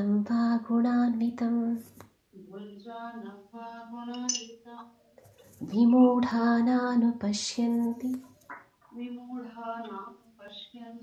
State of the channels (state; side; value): identical; both; correlation 1.00